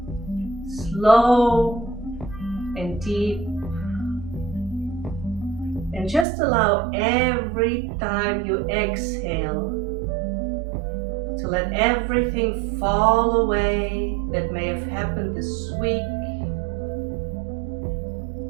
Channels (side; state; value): left; drops out; at 6.2 s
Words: Slow and deep. And just allow every time you exhale to let everything fall away that may have happened this week.